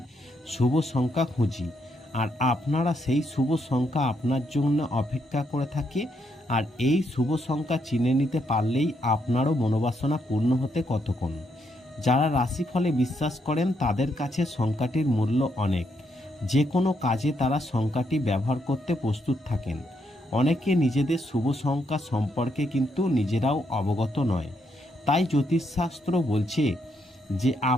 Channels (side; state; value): both; normal; correlation 0.77